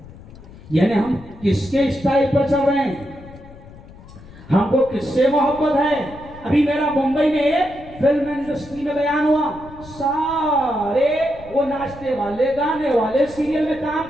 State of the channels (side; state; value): left; noise; rumble, 19 dB below the sound